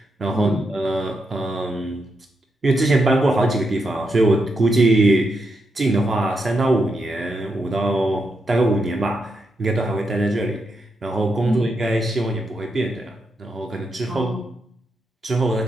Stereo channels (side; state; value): both; normal; correlation 0.83